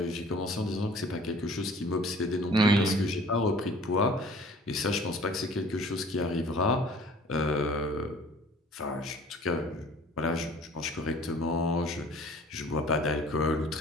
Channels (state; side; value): normal; both; correlation 0.50